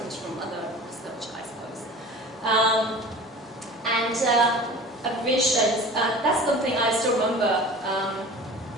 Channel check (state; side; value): normal; both; correlation 0.40